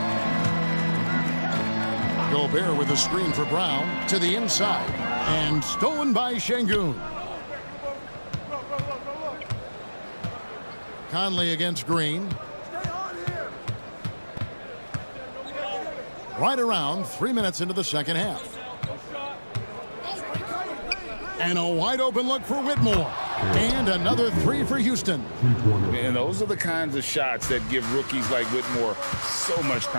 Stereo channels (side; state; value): both; inverted; correlation -1.00